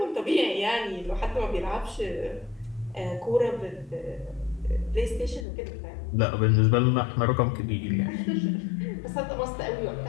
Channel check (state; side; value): drops out; right; at 5.5 s